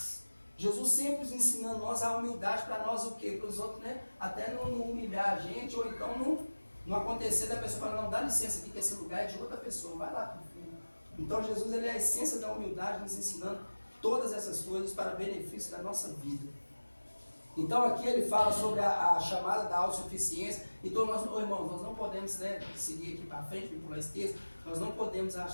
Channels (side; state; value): both; inverted; correlation -1.00